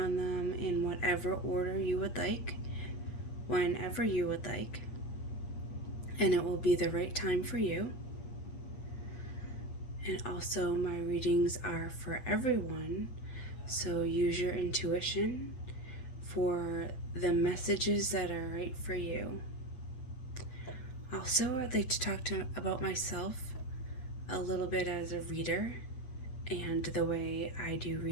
them in whatever order you would like, whenever you would like, and it will be the right time for you. And also my readings are for everyone, so use your intuition for the messages that are right for you. Also, I'd like to talk about myself a little bit as a reader and the way I do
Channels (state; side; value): late; right; 8.0 ms